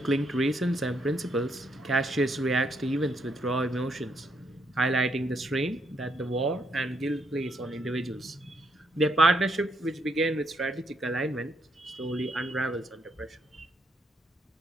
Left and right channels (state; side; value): normal; both; correlation 0.75